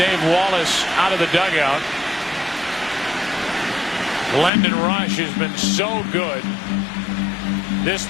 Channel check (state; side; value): drops out; right; at 4.5 s